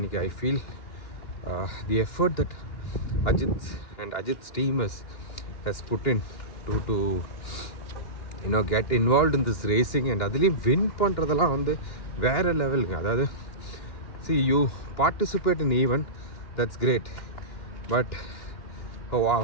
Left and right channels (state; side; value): late; right; 2.9 ms